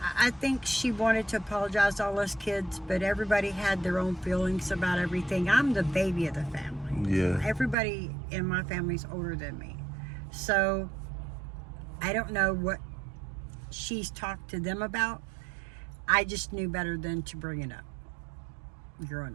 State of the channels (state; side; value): drops out; left; at 7.8 s